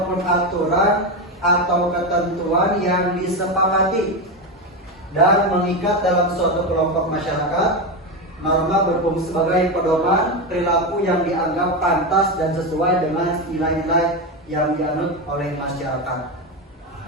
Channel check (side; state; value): both; normal; correlation 0.14